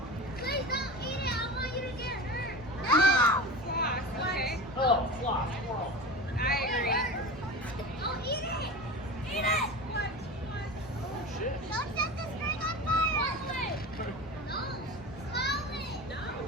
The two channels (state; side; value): normal; both; correlation 0.30